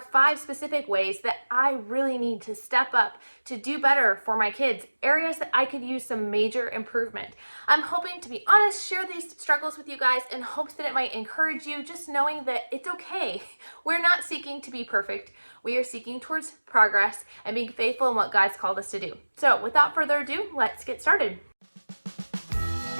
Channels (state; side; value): inverted; both; correlation -1.00